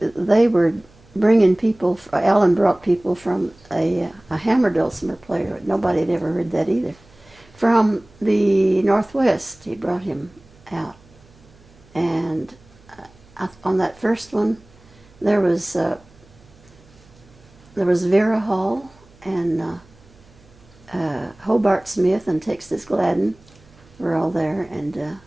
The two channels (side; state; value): right; noise; hum, 27 dB below the sound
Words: were bringing people. Alan brought people from a hammer dulcimer player. Nobody had ever heard that either. From the Northwest, he brought him out, and on that first one, there was Vera Hall and Hobart Smith and Texas Gladden were all there, and